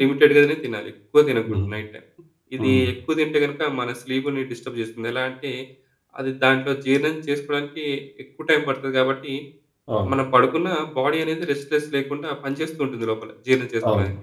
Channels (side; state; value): both; identical; correlation 1.00